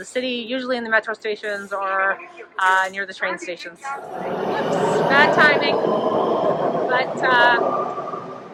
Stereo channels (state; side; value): identical; both; correlation 1.00